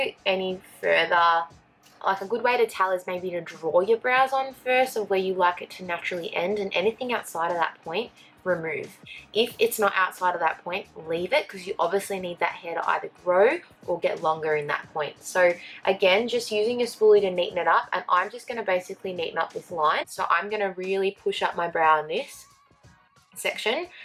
any further. Like a good way to tell is maybe to draw your brows on first of where you like it to naturally end, and anything outside of that point, remove. If it's not outside of that point, leave it, because you obviously need that hair to either grow or get longer in that point. So again, just using your spoolie to neaten it up, and I'm just going to basically neaten up this line. So I'm going to really push up my brow in this section.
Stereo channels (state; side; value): identical; both; correlation 1.00